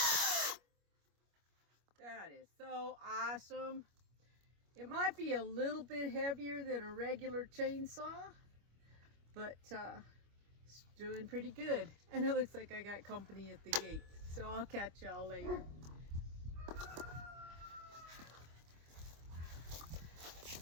awesome. It might be a little bit heavier than a regular chainsaw, but it's doing pretty good. And it looks like I got company at the gate. So I'll catch y'all later.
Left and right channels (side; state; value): left; late; 25 ms